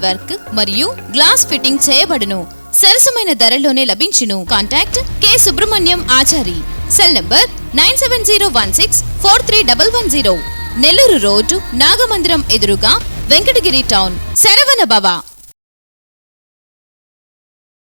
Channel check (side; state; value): both; inverted; correlation -1.00